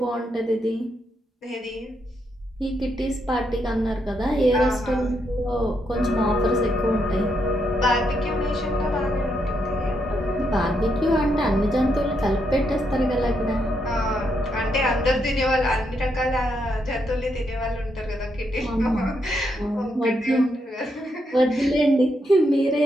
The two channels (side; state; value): both; normal; correlation 0.79